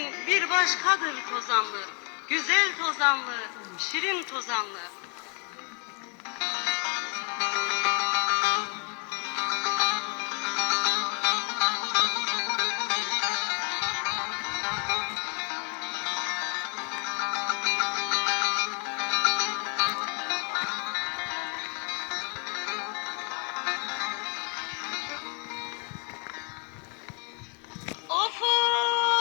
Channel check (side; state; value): right; quieter; 38.0 dB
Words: bir başkadır tozanlı. Güzel tozanlı, şirin tozanlı. Of